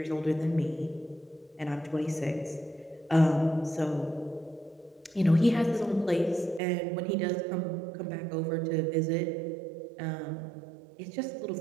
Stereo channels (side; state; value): left; drops out; at 6.6 s